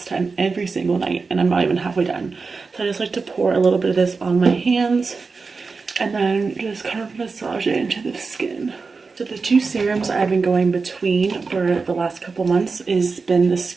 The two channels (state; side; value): quieter; left; 4.5 dB